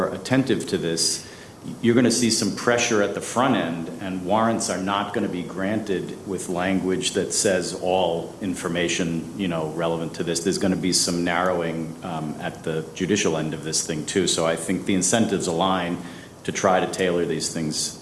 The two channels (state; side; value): identical; both; correlation 1.00